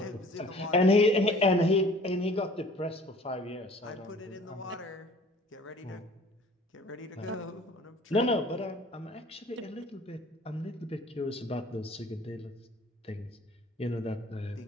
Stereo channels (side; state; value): both; normal; correlation 0.50